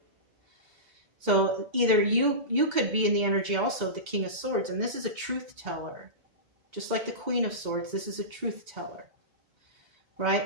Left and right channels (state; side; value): late; left; 2.1 ms